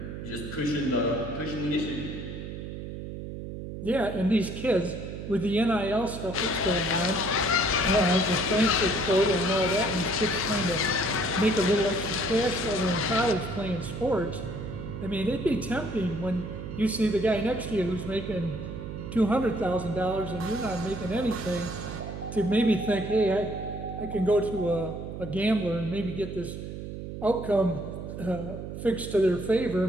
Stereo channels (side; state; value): right; noise; hum, 8 dB below the sound